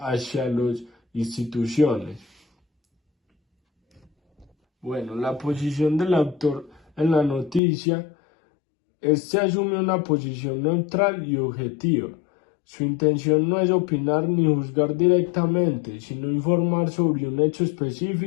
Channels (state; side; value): drops out; right; at 7.6 s